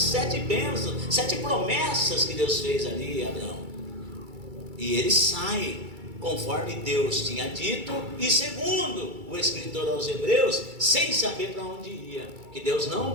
bênçãos, 7 promessas que Deus fez ali a Abraão. E ele sai conforme Deus tinha dito, e segundo o escritor aos Hebreus, sem saber para onde ia, que Deus não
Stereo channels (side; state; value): left; late; 2.3 ms